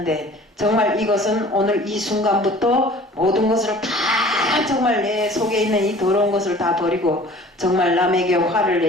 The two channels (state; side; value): normal; both; correlation 0.47